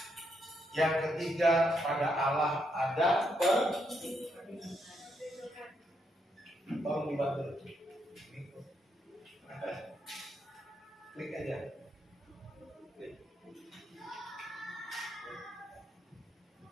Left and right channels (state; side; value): normal; both; correlation 0.78